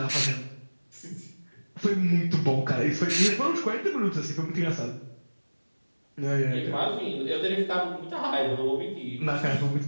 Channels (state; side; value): inverted; both; correlation -1.00